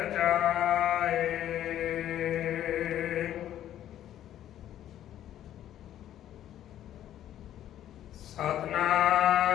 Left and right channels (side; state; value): right; quieter; 11.7 dB